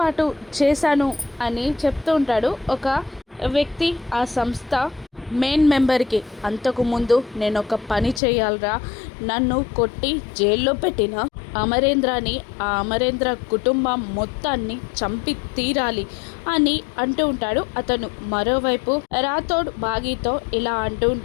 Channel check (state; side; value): drops out; right; at 8.2 s